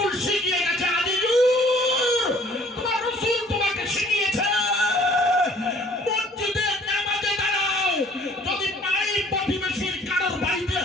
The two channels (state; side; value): normal; both; correlation 0.56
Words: শিখিয়ে গেছে, আজিজুর তোমার রসুল তোমাকে শিখিয়েছে মসজিদে নামাজে দাঁড়াও, যদি পাই প্রতিবেশীর কারোর বাড়িতে